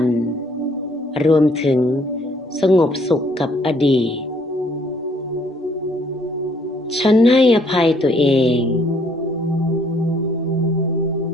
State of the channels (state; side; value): normal; both; correlation 0.65